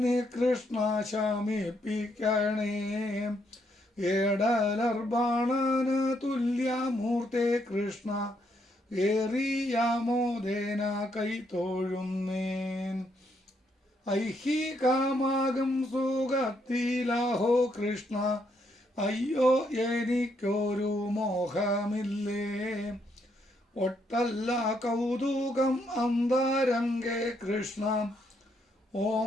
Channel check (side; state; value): both; normal; correlation 0.75